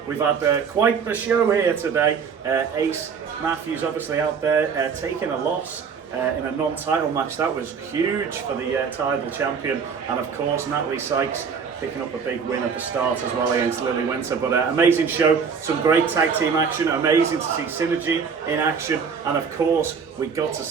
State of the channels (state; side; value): quieter; left; 6.1 dB